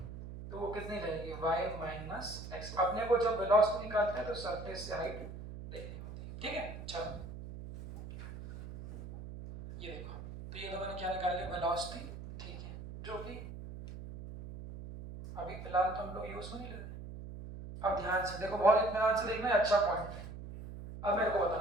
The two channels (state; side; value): noise; right; hum, 11 dB below the sound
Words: तो वो कितनी रहेगी, y माइनस x। अपने को जब वेलोसिटी निकालते हैं तो सरफेस से हाइट देखनी होती है। ठीक है, चलो ये देखो, तो ये तो मैंने क्या निकाल लिया, वेलोसिटी, ठीक है, जो कि अभी फिलहाल तो हम लोग यूज में नहीं ले रहे। अब ध्यान से देखो, बहुत इत्मीनान से देखना है, अच्छा पॉइंट है। अब मेरे को